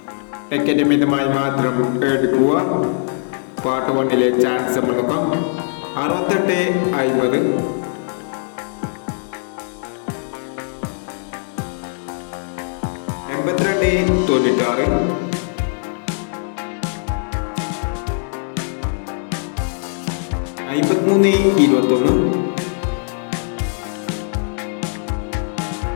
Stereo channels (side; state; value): right; silent; 65 dB below the other